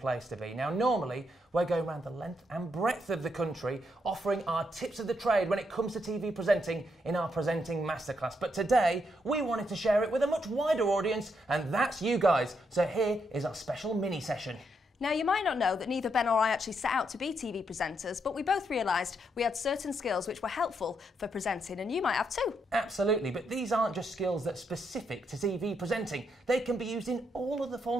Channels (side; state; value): both; normal; correlation 0.78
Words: to Be. Now, normally, we're going around the length and breadth of the country offering our tips of the trade when it comes to TV presenting in our Presenting Masterclass. But today, we wanted to share it with a much wider audience, and that's you guys. So here is our special mini session. Now, you might not know that neither Ben or I actually set out to be TV presenters, but we both realised we had certain skills which were helpful for presenting, and you might have too. Absolutely, but these aren't just skills that are specific to TV presenting. They can be used in all other